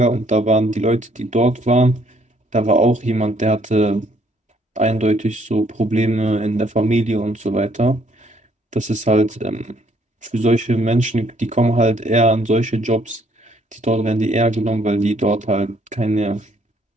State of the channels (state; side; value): normal; both; correlation 0.65